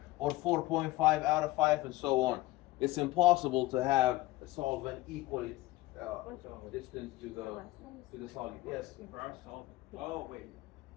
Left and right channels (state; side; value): quieter; right; 18.4 dB